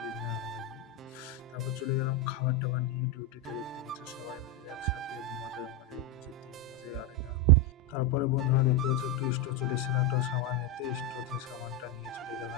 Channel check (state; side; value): normal; both; correlation 0.07